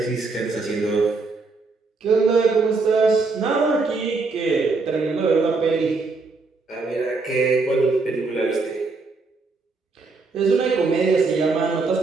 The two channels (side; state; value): left; quieter; 4.0 dB